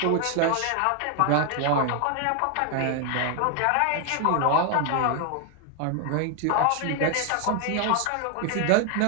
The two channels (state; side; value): different; both; correlation 0.01